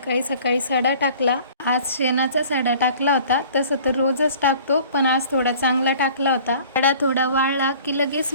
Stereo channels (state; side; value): inverted; both; correlation -0.49